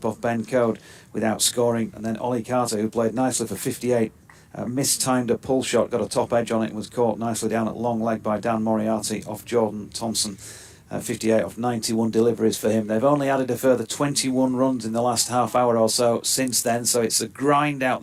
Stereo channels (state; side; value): identical; both; correlation 1.00